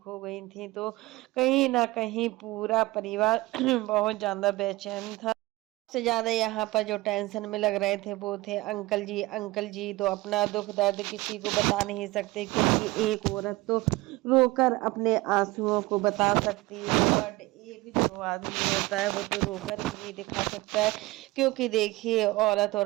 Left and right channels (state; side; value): quieter; left; 20.4 dB